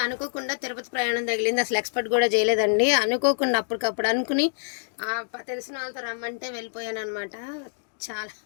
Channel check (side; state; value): right; silent; digital silence